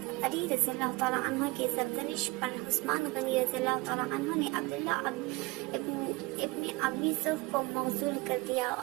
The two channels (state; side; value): quieter; left; 23.5 dB